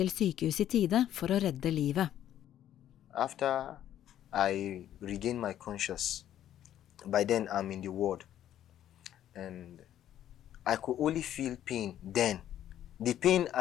sykehus i tide for å redde livet. After I regained my conscience, by then I'm in the ward, and I could only feel pain then. The pain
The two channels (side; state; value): right; quieter; 11.4 dB